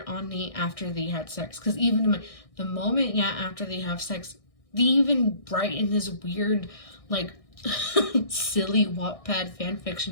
on Nate after they had sex. Because even the moment, after they have sex, they even write in this weird, like, silly Wattpad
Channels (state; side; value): late; right; 1.6 ms